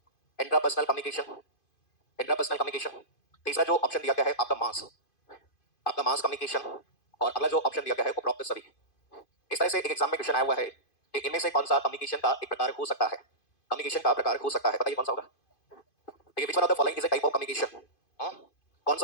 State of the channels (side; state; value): right; late; 2.5 ms